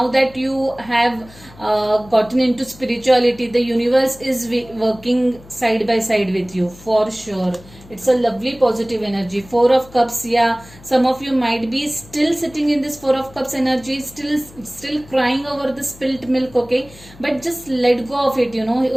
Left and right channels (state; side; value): noise; left; hum, 22 dB below the sound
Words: that you have gotten into spirituality, the universe is working side by side with you for sure. It's a lovely positive energy. Four of Cups, yeah, some of you might be still sitting in this Four of Cups energy, still crying over the spilt milk. Okay, but just let go of it, you